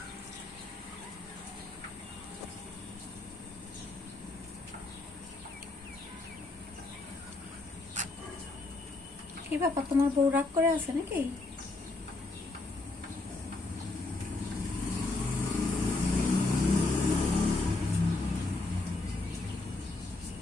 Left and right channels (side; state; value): right; quieter; 3.2 dB